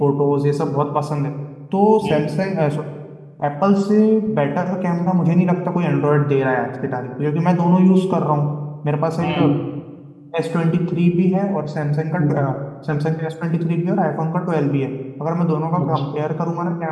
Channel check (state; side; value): identical; both; correlation 1.00